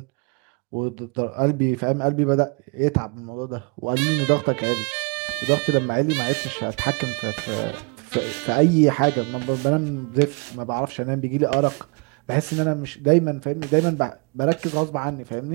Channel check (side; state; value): left; quieter; 32.9 dB